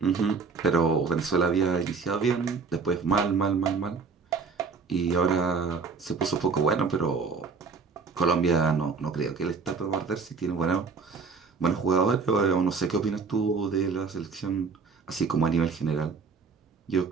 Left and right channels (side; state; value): left; quieter; 4.8 dB